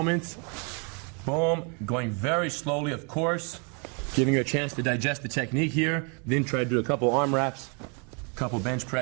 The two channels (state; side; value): quieter; left; 36.1 dB